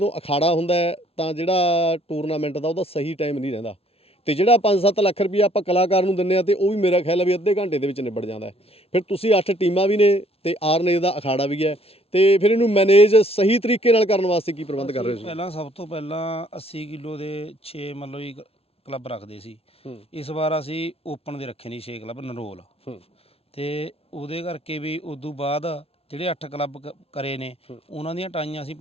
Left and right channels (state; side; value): late; right; 0.29 ms